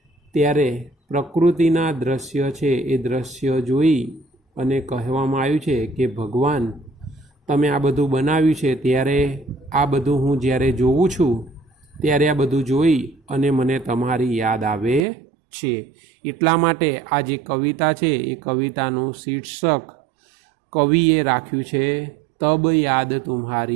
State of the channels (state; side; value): drops out; left; at 15.1 s